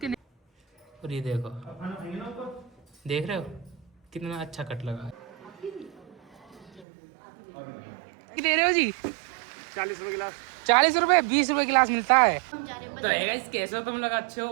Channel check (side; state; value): left; drops out; at 6.9 s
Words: और ये देखो, देख रहे हो कितना अच्छा कट लगा है। दे रहे हो जी 40 रुपए गिलास। 40 रुपए 20 रुपए गिलास मिलता है। तो गाइस कैसे हो तुम लोग, अच्छे